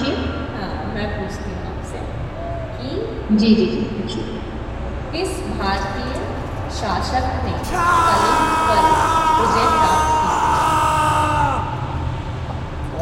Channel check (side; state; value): both; identical; correlation 1.00